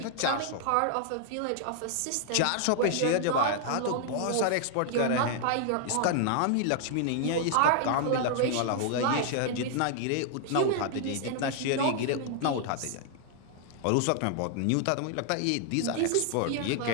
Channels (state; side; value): different; both; correlation 0.00